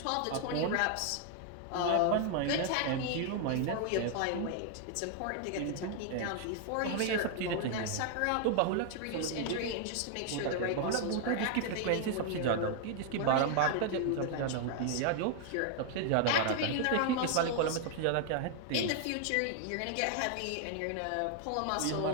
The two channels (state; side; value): different; both; correlation 0.00